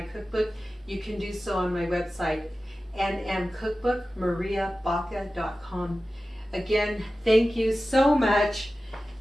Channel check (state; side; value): normal; both; correlation 0.95